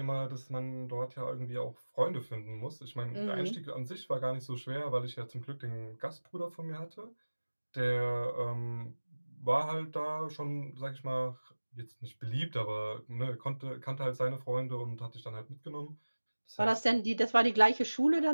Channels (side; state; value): both; inverted; correlation -1.00